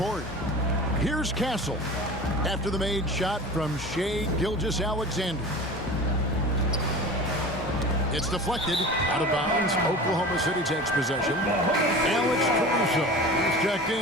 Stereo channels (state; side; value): normal; both; correlation 0.36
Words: Here's Castle after the made shot from Shai Gilgeous-Alexander. It's deflected out of bounds. Oklahoma City takes possession. Alex Caruso is checked